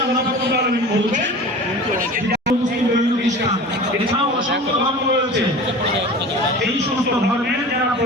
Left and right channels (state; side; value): normal; both; correlation 0.37